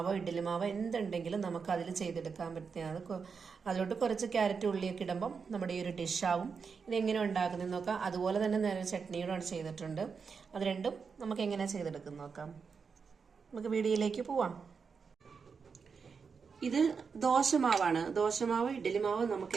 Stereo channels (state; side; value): quieter; left; 5.6 dB